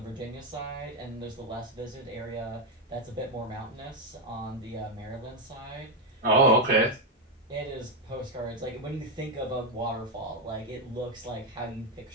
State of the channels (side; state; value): both; normal; correlation 0.05